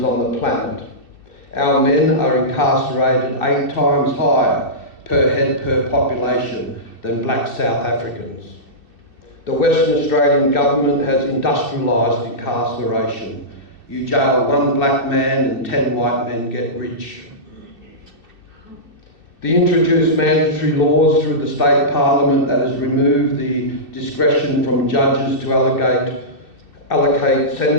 on the planet. Our men are incarcerated 8 times higher per head per population than black South Africans. The Western Australian government has industrialised incarceration. You jail one black man and 10 white men get rich. The introduced mandatory laws through the state parliament that has removed the discretion from judges to allocate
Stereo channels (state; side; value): late; right; 2.6 ms